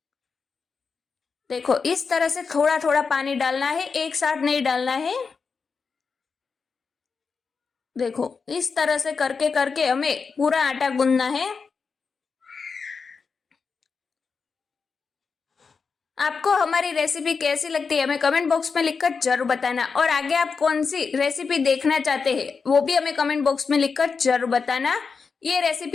देखो इस तरह से थोड़ा थोड़ा पानी डालना है, एक साथ नहीं डालना है। देखो इस तरह से करके करके हमें पूरा आटा गूंदना है। आपको हमारी रेसिपी कैसी लगती है हमें कमेंट बॉक्स में लिखकर जरूर बताना, और आगे आप कौन सी रेसिपी देखना चाहते हैं वो भी हमें कमेंट बॉक्स में लिखकर जरूर बताना। ये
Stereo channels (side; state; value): right; quieter; 5.2 dB